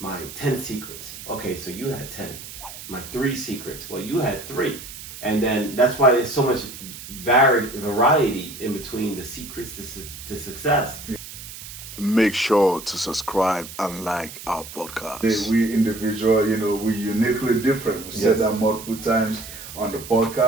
10 secrets. Okay, so you had 10. My 3 secrets. Well, you had 3. And then that's why there's so much variety in between the secrets to success. Make sure to subscribe and like our podcast. We individual, we uniquely different. We said that multiple times on the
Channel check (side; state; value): right; noise; hiss, 13 dB below the sound